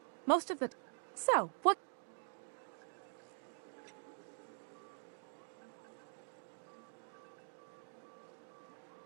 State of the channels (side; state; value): left; silent; digital silence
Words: Most of the... So, what...